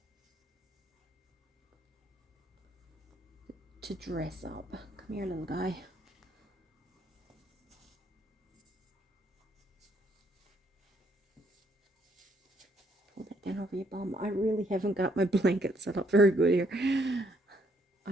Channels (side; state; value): both; normal; correlation 0.70